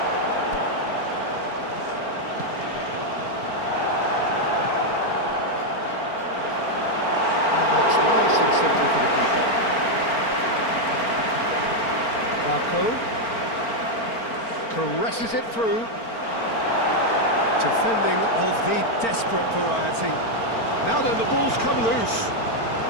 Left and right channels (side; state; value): right; late; 4.4 ms